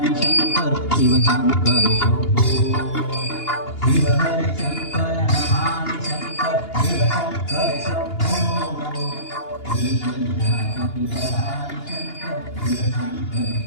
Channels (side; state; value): right; late; 2.8 ms